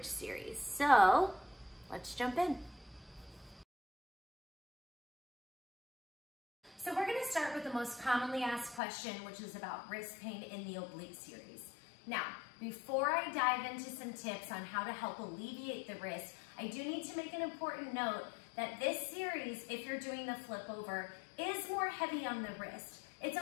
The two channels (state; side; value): drops out; right; at 8.8 s